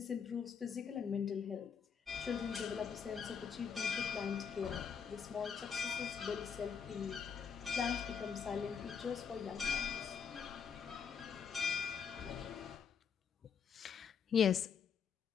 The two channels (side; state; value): right; quieter; 6.8 dB